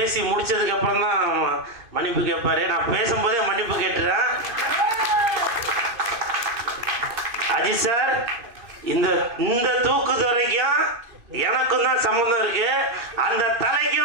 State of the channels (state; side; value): late; left; 2.5 ms